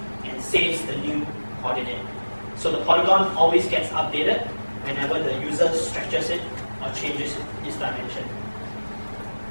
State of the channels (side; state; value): both; inverted; correlation -1.00